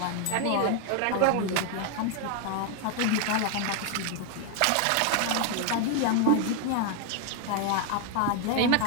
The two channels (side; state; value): both; different; correlation 0.01